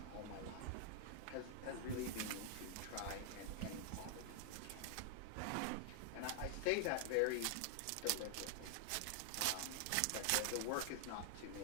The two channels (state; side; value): different; both; correlation -0.01